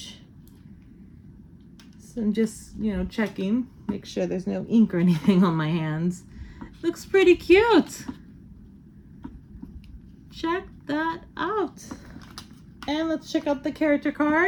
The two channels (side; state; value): both; identical; correlation 1.00